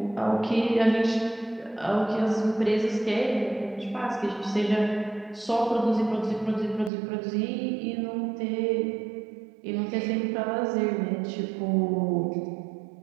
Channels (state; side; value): drops out; left; at 6.9 s